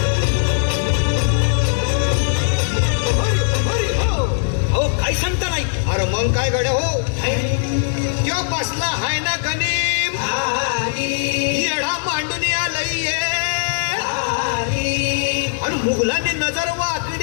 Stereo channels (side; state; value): right; silent; digital silence